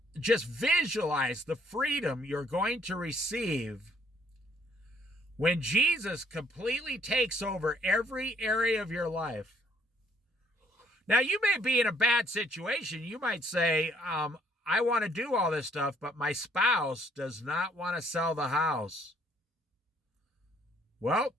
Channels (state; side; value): normal; both; correlation 0.65